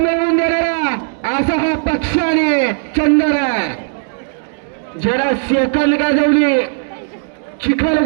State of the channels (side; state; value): left; silent; digital silence